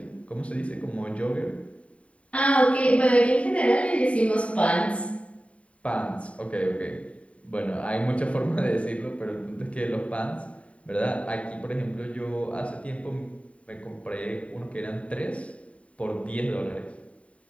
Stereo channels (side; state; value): right; late; 0.064 ms